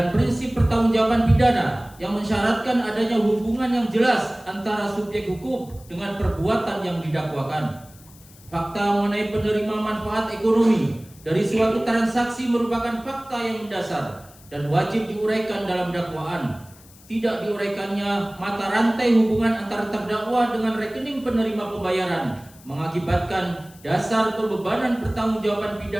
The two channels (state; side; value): noise; left; hiss, 24 dB below the sound